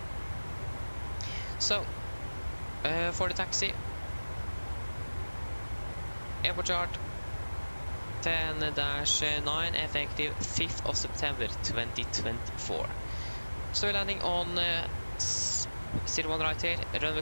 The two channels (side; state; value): both; inverted; correlation -1.00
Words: So, for the taxi, airport chart 10-9 effective 5th of September 2024. So we're landing on 01 right here, runway